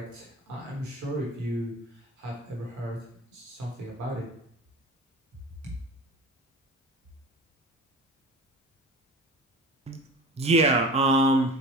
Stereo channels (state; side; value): normal; both; correlation 0.37